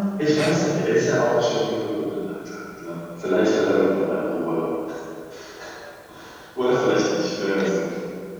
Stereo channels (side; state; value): both; identical; correlation 1.00